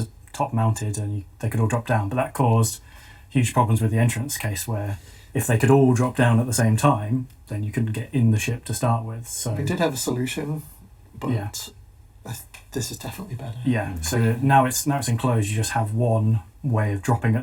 mounted, and they could all drop down. But that caused huge problems with the entrance case, where if they could all drop down at the same time, then you couldn't get in the ship to start with. So we did have a solution, but this is definitely better. Yeah. So now it's enclosed. You just have one way of dropping at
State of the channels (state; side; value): identical; both; correlation 1.00